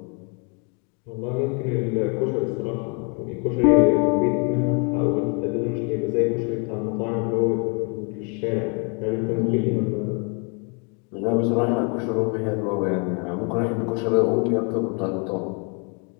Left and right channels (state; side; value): quieter; right; 35.9 dB